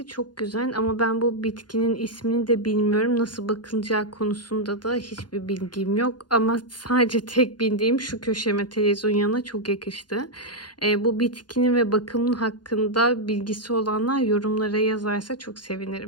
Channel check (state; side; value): late; right; 0.70 ms